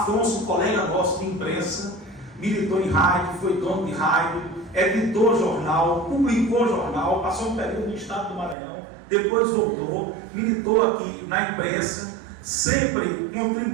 colega nosso de imprensa, militou em rádio, foi dono de rádio, editou jornal, publicou jornal, passou um período no estado do Maranhão, depois voltou, militou aqui na imprensa, sempre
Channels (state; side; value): drops out; left; at 8.6 s